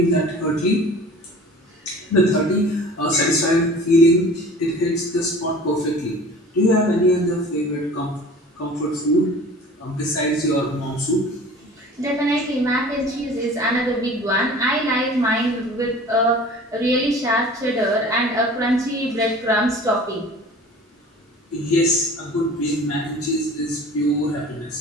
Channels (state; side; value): normal; both; correlation 0.43